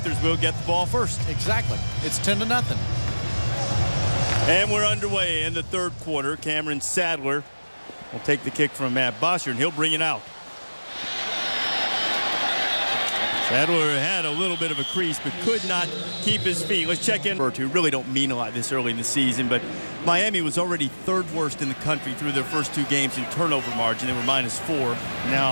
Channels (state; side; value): inverted; both; correlation -1.00